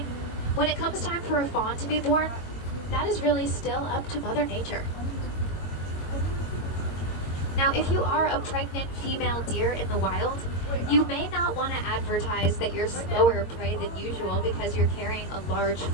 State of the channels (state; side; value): late; right; 22 ms